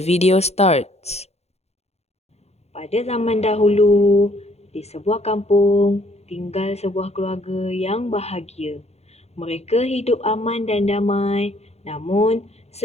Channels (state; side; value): late; right; 0.31 ms